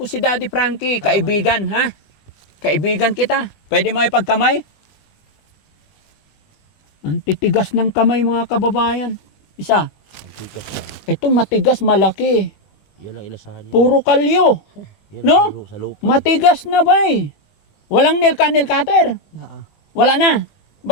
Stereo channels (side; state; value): right; late; 20 ms